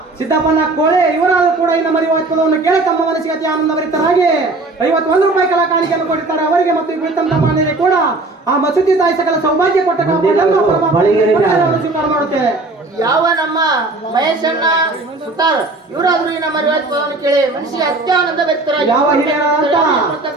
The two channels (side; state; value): left; quieter; 3.1 dB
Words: ಸಿದ್ದಪ್ಪನ ಕೋಳೆ ಇವರಾದ್ರು ಕೂಡ ಈ ನಮ್ಮ ಪದವನ್ನು ಕೇಳಿ ತಮ್ಮ ಮನಸ್ಸಿಗೆ ಅತಿ ಆನಂದ ಭರಿತರಾಗಿ 51 ರೂಪಾಯಿ ಕಲಾ ಕಾಣಿಕೆಯನ್ನು ಕೊಟ್ಟಿದ್ದಾರೆ. ಅವರಿಗೆ ಮತ್ತು ಈ ಕುಳಿತಂತ ಮಾನ್ಯರಿಗೆ ಕೂಡ ಆ ಮಸೂತಿ ತಾಯಿ ಸಕಲ ಸೌಭಾಗ್ಯ ಕೊಟ್ಟ ಕಾಪಾಡಲೆಂದು ಪರಮಾತ್ಮನಲ್ಲಿ ಸ್ವೀಕಾರ ಮಾಡುತ್ತೇವೆ. ಯಾವ ನಮ್ಮ ಮಹೇಶಣ್ಣ ಸುತಾರ್ ಇವರಾದ್ರು ಈ ನಮ್ಮ ಪದವನ್ನು ಕೇಳಿ ಮನಸ್ಸಿಗೆ ಅತ್ಯಾನಂದ ಭರಿತರಾಗಿ ಯಾವ ಹಿರಿಯರಾದಂತ